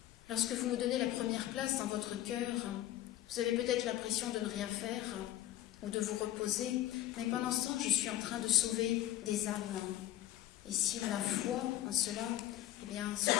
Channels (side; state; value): right; quieter; 13.8 dB